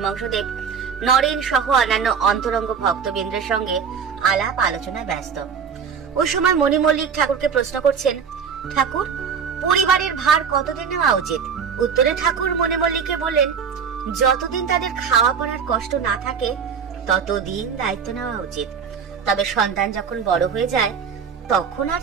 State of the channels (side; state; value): left; quieter; 6.7 dB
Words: নরেন সহ অন্যান্য অন্তরঙ্গ ভক্তবৃন্দের সঙ্গে আলাপ আলোচনায় ব্যস্ত। ওই সময় মণি মল্লিক ঠাকুরকে প্রশ্ন করছেন, ঠাকুর, পরিবারের ভার কতদিন নেওয়া উচিত? উত্তরে ঠাকুর মণি মল্লিককে বললেন, যতদিন তাদের খাওয়া পড়ার কষ্ট না থাকে ততদিন দায়িত্ব নেওয়া উচিত। তবে সন্তান যখন বড় হয়ে যায় তখন আর